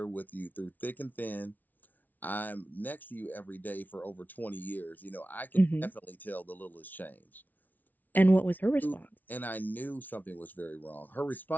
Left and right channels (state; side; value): late; right; 0.081 ms